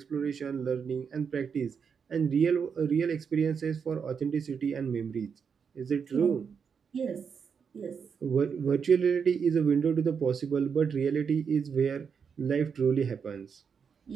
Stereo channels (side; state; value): left; quieter; 6.4 dB